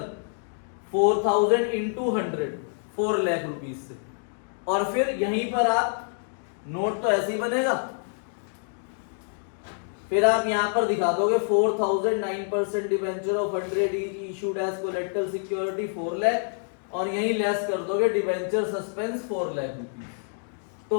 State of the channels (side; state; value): right; silent; 60 dB below the other